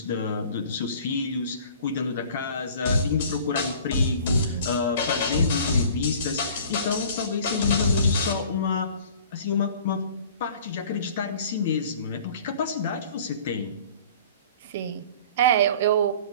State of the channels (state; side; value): inverted; both; correlation -0.47